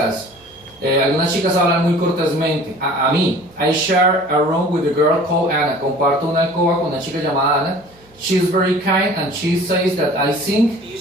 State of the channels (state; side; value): noise; right; hum, 30 dB below the sound